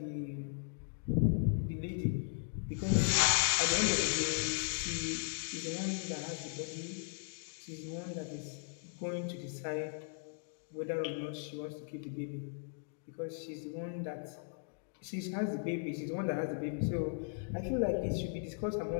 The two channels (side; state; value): right; silent; digital silence